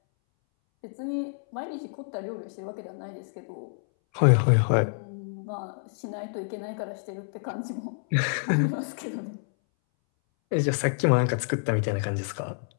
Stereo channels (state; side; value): silent; right; 59 dB below the other